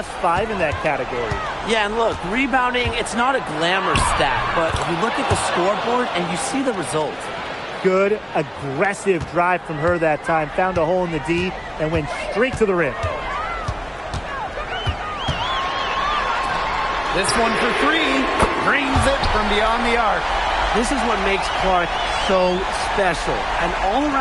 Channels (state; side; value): identical; both; correlation 1.00